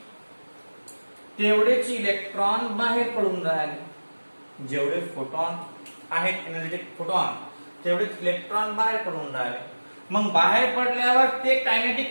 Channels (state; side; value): inverted; both; correlation -1.00